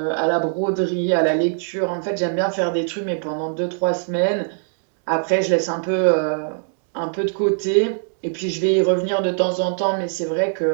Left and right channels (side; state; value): left; silent; digital silence